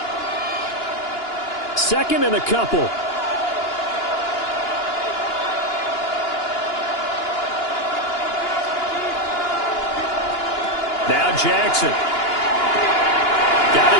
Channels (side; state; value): right; late; 2.9 ms